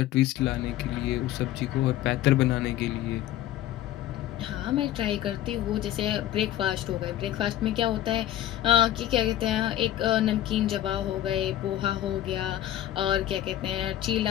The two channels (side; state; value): right; quieter; 13.1 dB